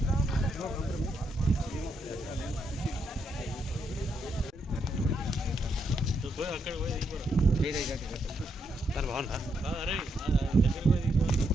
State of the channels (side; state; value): both; normal; correlation 0.79